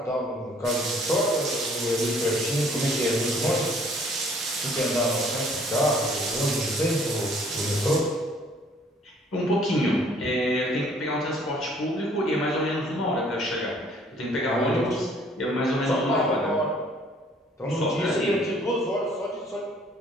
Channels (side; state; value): both; normal; correlation 0.59